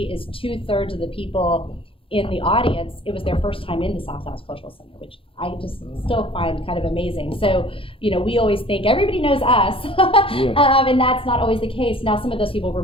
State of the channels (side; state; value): right; late; 0.26 ms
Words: is 2/3 of the people in the audience, it was their first time in the South Dallas Cultural Center, which I just still find kind of amazing. So, we always think everybody knows us, and that's not always the case. Now, some of those people were